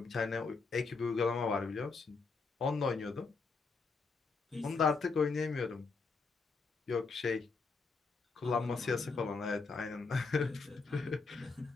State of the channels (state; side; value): quieter; right; 4.4 dB